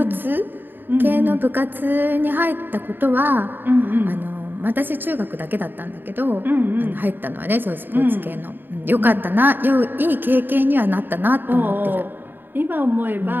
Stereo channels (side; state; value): left; late; 0.094 ms